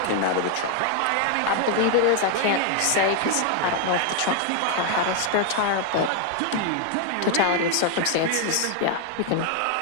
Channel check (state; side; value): different; both; correlation 0.00